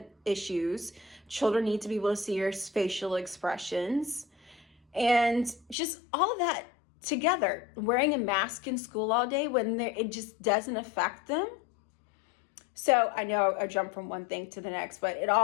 issues, children need to be able to see your facial expressions, and just all of that together. Wearing a mask in school all day when it just doesn't affect them. So I know I jumped from one thing to the next, but it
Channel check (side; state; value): right; drops out; at 5.8 s